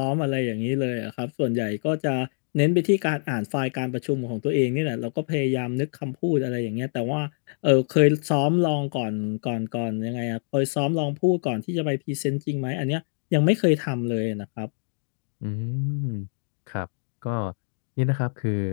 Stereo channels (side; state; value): right; silent; digital silence